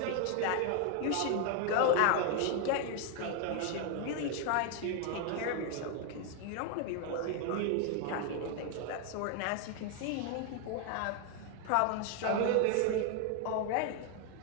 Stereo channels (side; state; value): both; different; correlation 0.01